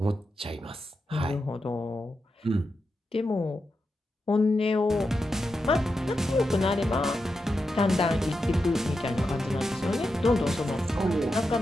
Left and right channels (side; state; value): both; normal; correlation 0.88